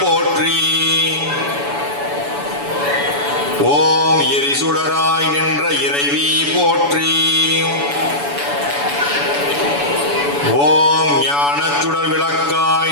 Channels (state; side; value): late; left; 7.0 ms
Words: போற்றி. ஓம் எரிசுடராய் நின்ற இறைவி போற்றி. ஓம் ஞானச்சுடர் விளக்காய்